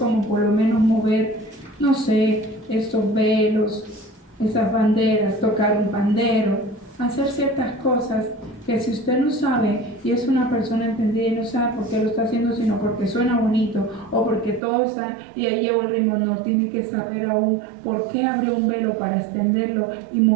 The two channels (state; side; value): drops out; left; at 14.6 s